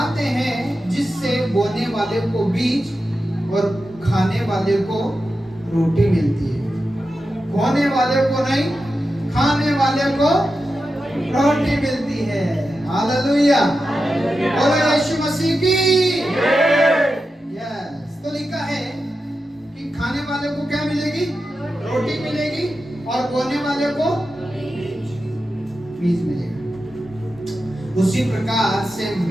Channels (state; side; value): normal; both; correlation 0.91